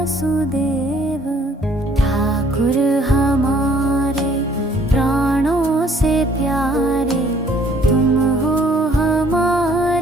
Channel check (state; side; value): normal; both; correlation 0.61